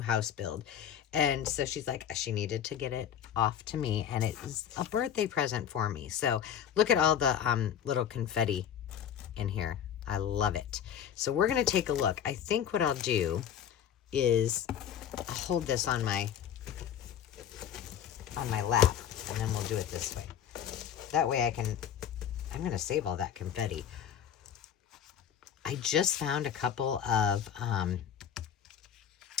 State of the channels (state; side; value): quieter; right; 9.1 dB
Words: house build. And so she's like, she needed to get it off to me. And it is a birthday present for me. So look at all the little confetti in here. I love it. So we're going to take a look. I think what I'll do is I'll hold this on my lap, and then we'll do it this way. That way I'm going to save all that confetti. I just found a couple of,